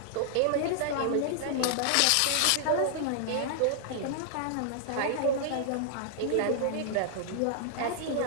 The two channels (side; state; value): both; different; correlation -0.01